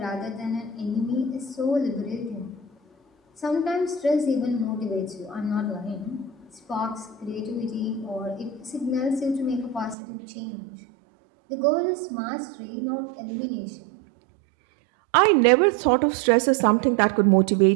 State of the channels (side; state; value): left; drops out; at 10.0 s